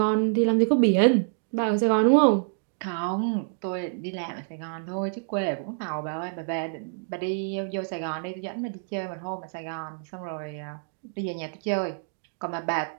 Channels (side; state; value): left; silent; digital silence